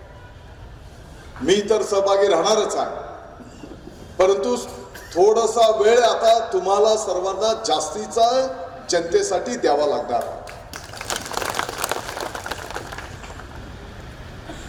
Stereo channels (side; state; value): both; identical; correlation 1.00